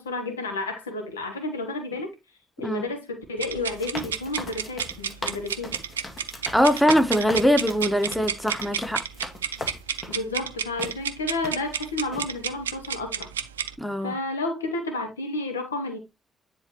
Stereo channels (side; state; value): both; normal; correlation 0.45